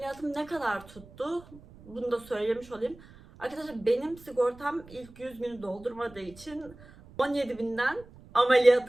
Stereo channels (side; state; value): right; noise; rumble, 21 dB below the sound